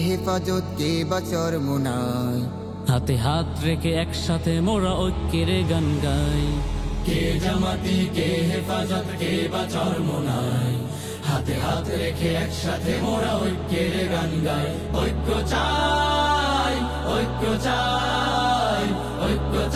হেফাজত কে বাচর মুনাই, হাতে হাত রেখে একসাথে মোরা ঐক্যের গান গাই। কে জামাতি কে হেফাজত কে বাচর মোনাই, হাতে হাত রেখে একসাথে মোরা ঐক্যের গান গাই। ঐক্য চাই, ঐক্য চাই, ঐক্য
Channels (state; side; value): identical; both; correlation 1.00